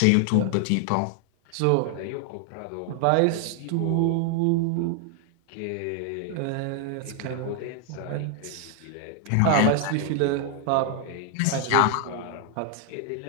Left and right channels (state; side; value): different; both; correlation 0.00